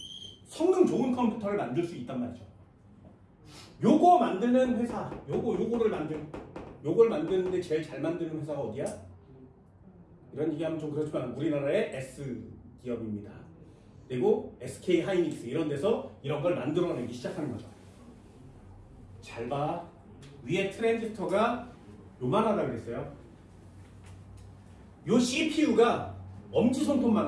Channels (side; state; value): both; identical; correlation 1.00